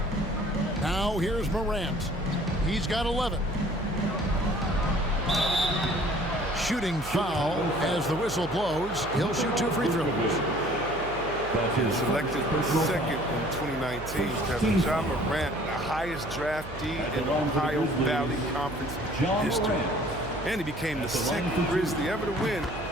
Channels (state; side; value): noise; right; hum, 13 dB below the sound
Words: Now here's Morant. He's got 11. Shooting foul as the whistle blows. He'll shoot 2 free throws. Selected second in 2019, Kevin. Ja Morant, the highest draftee in Ohio Valley Conference history. And he became the second Grizzly ever to win